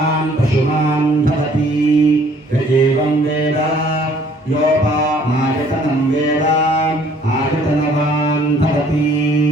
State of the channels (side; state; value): both; normal; correlation 0.58